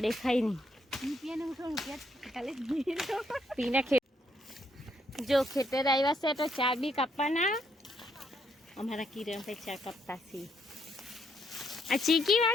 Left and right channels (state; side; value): normal; both; correlation 0.74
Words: દેખાય નહીં. પીને જો ખેતર આવ્યા છે તો ચા બી કાપવાના. અમારા કિરણ ભાઈ ચા કાપતા છે. આ ચીકી